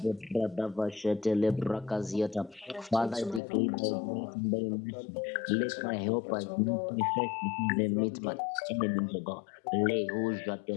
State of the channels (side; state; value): right; drops out; at 3.4 s